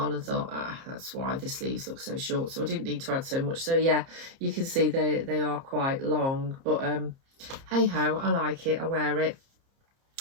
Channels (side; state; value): left; late; 30 ms